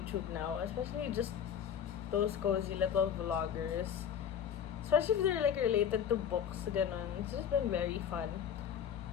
now, especially just those cozy little vloggers. Especially if they're like related to books, ganon. It's just been very fun.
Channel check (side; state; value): right; quieter; 8.6 dB